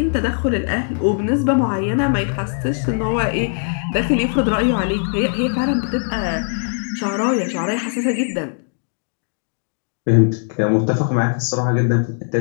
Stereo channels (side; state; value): right; silent; 63 dB below the other